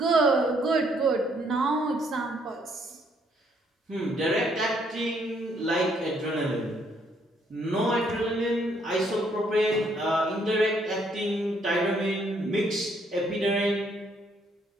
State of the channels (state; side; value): normal; both; correlation 0.69